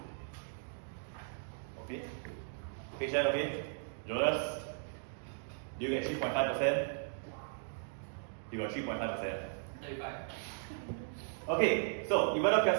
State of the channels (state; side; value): silent; left; digital silence